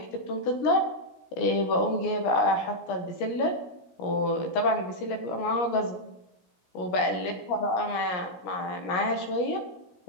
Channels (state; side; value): late; right; 17 ms